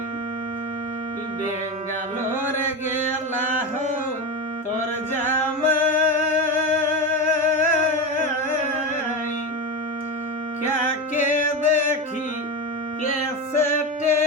বেঙ্গালোর গেলা হো তোর জামাই কাকে দেখি কেসেটে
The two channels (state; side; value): normal; both; correlation 0.19